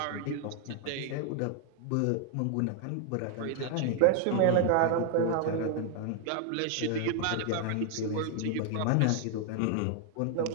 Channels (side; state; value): both; different; correlation 0.00